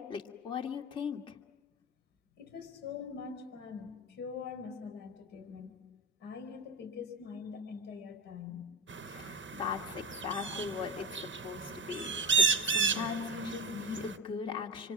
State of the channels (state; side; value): normal; both; correlation 0.28